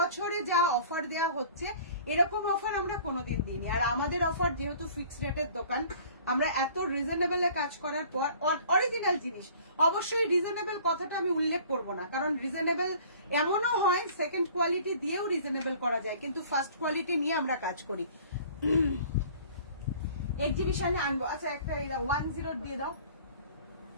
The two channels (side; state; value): both; inverted; correlation -0.49